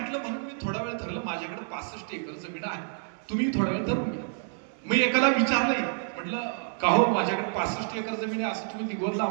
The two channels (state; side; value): silent; left; 59 dB below the other